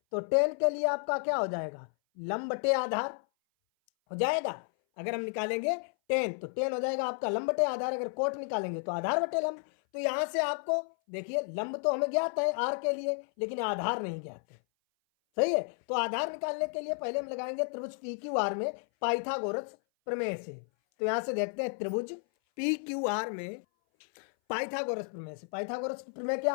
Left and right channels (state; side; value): silent; right; 56 dB below the other